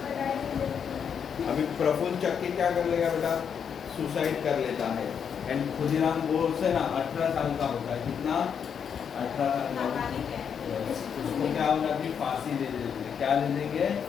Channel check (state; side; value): quieter; right; 7.4 dB